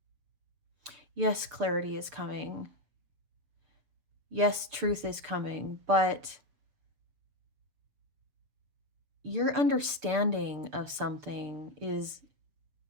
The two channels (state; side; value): late; left; 6.8 ms